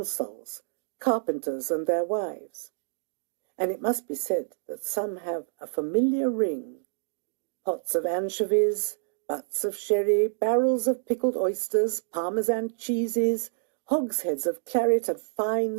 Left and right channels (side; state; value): left; silent; digital silence